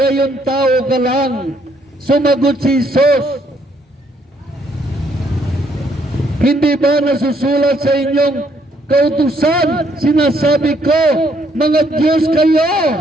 tao ka lang. Sumagot si Jesus, Hindi ba nasusulat sa inyong kautusan? Sinasabi ko, mga Diyos kayo.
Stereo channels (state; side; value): normal; both; correlation 0.69